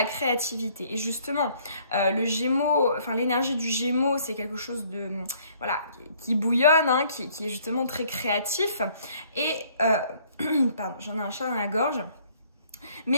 créativité. Et justement, le Gémeaux, enfin l'énergie du Gémeaux, c'est quelque chose de, voilà, qui bouillonne, hein, qui est justement très créatif. Et, pardon, j'en ai un chat dans la gorge.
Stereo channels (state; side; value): inverted; both; correlation -0.61